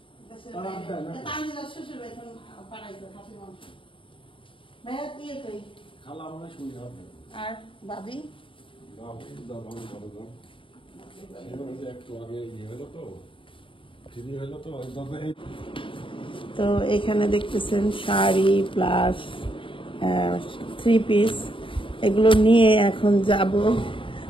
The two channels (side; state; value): right; late; 0.25 ms